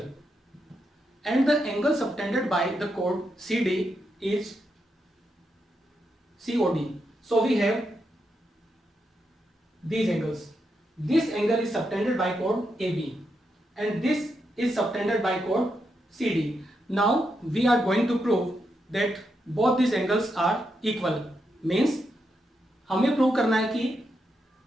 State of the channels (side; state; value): both; normal; correlation 0.83